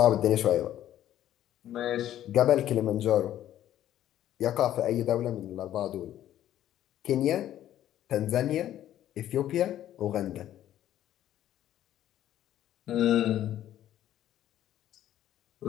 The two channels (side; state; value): right; quieter; 12.1 dB